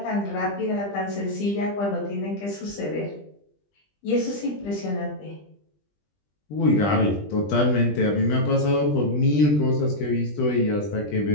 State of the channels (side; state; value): right; late; 20 ms